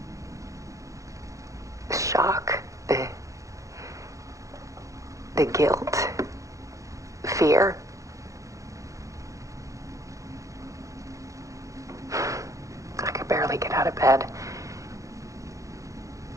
the shock, the guilt, fear. I could barely get out of bed.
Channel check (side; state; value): left; late; 0.15 ms